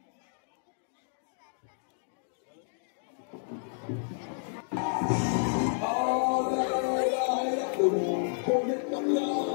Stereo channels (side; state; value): right; silent; digital silence